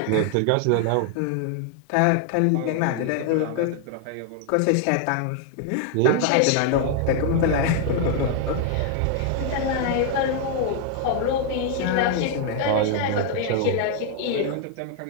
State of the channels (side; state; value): both; different; correlation 0.00